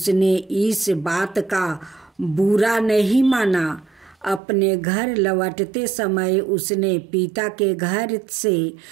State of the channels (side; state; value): left; drops out; at 4.4 s